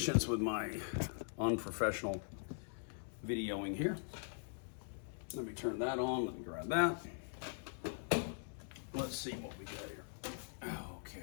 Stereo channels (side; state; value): right; silent; digital silence